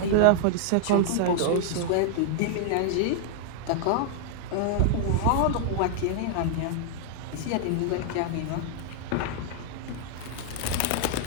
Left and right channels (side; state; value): both; different; correlation -0.01